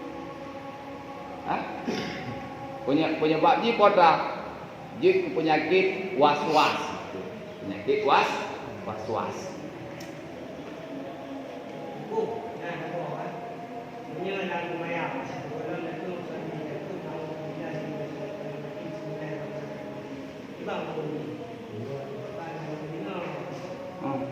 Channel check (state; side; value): identical; both; correlation 1.00